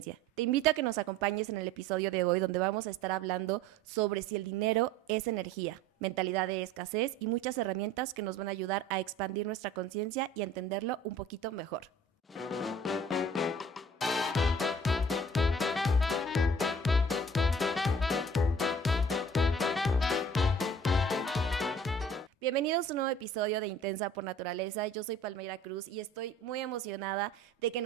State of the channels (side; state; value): both; normal; correlation 0.48